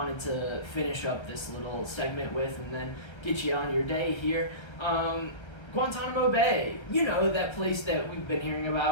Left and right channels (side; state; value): right; late; 1.3 ms